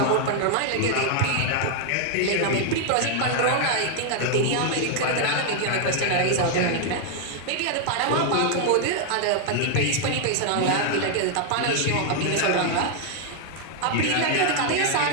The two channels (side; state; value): both; different; correlation 0.00